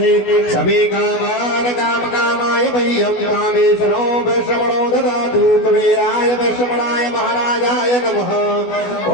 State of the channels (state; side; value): late; right; 16 ms